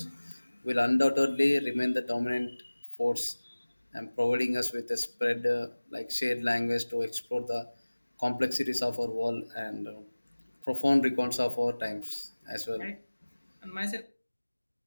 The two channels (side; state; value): both; inverted; correlation -1.00